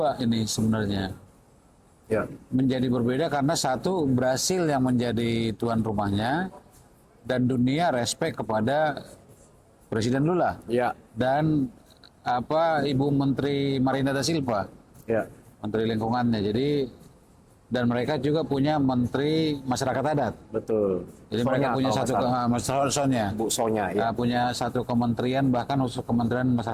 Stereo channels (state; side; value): identical; both; correlation 1.00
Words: ini sebenarnya. Ya. Menjadi berbeda karena satu, Brasil yang menjadi tuan rumahnya dan dunia respect kepada Presiden Lula. Ya. Dan Ibu Menteri Marina da Silva, Ya. Menteri Lingkungannya. Jadi dan mereka juga punya Menteri Masyarakat Adat. Betul. Jadi mereka punya satu Sonya. Bu Sonya ya. Punya satu kementerian, bahkan khusus Kementerian